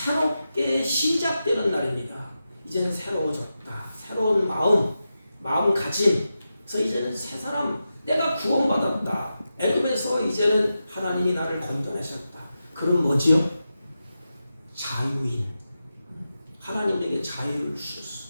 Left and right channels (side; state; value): both; inverted; correlation -0.90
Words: 시작되는 날입니다. 이제는 새로워졌다. 새로운 마음가짐. 그래서 이제는 새 사람, 내가 구원받았다. 애굽에서 이제는 하나님이 나를 건져내셨다. 그럼 뭐지요? 자유인. 하나님에게 자유를 주셨어.